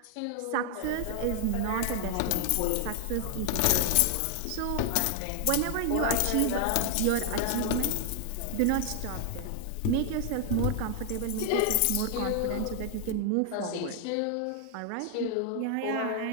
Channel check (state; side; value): different; both; correlation 0.00